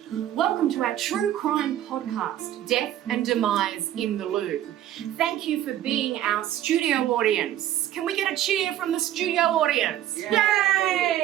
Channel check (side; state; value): left; quieter; 12.3 dB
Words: to our true crime podcast, Death and Demise in the Loo. Thank you for being our studio audience. Can we get a cheer from the studio audience?